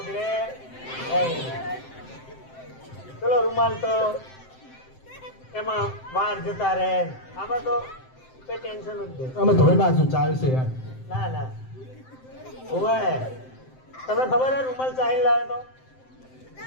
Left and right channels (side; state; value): right; late; 7.7 ms